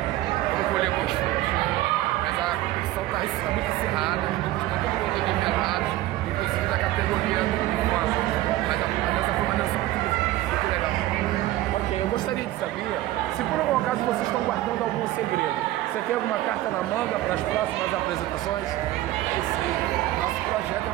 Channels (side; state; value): left; quieter; 15.8 dB